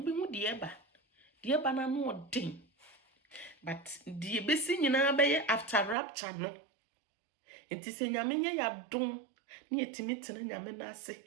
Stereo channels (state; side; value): drops out; left; at 6.0 s